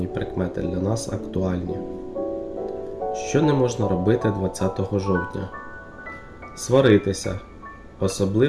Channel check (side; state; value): both; identical; correlation 1.00